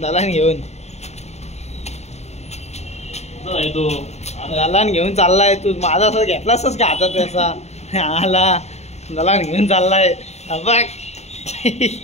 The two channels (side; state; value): right; late; 0.32 ms